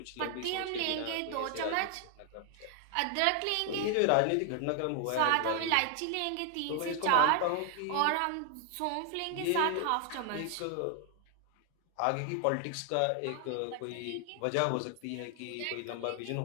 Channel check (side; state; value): both; different; correlation 0.00